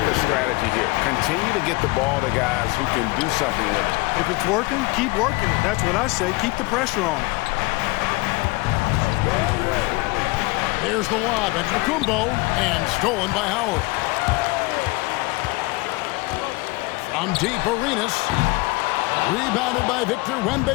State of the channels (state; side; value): quieter; right; 24.0 dB